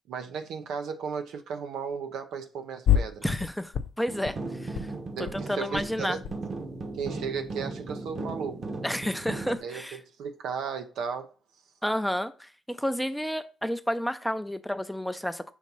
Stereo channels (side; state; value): both; normal; correlation 0.73